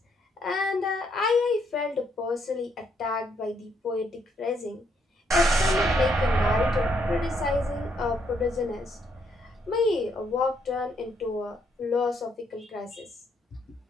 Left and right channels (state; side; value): normal; both; correlation 0.73